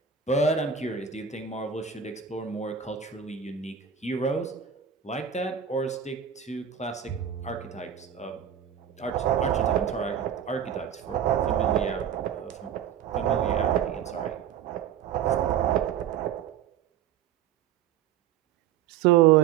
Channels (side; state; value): left; quieter; 8.7 dB